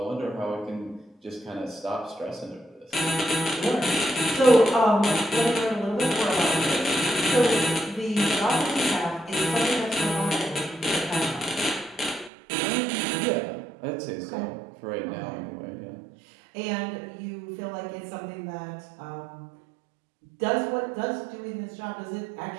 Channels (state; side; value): drops out; left; at 12.3 s